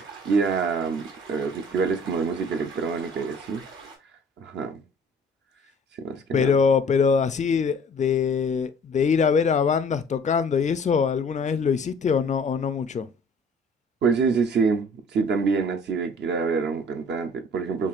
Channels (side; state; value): both; normal; correlation 0.51